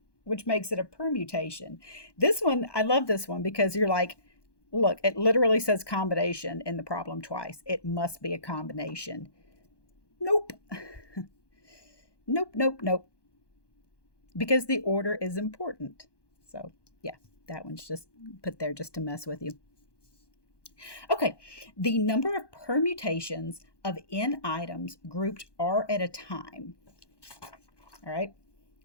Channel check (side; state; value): right; late; 1.2 ms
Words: which makes it a permutation. This one, I love this one because you're like, look, it literally says combination in the problem twice. It must be a combination. Nope. Nope. Because the order is important. So, yeah, that one's just put there just to mess with you. Okay, the number of permutations of n items grouped R at a time, all right,